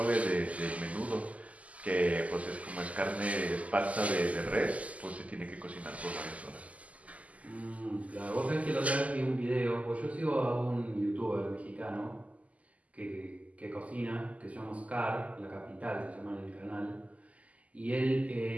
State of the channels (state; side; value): late; left; 0.070 ms